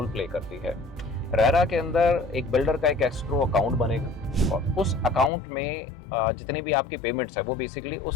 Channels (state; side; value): drops out; right; at 5.3 s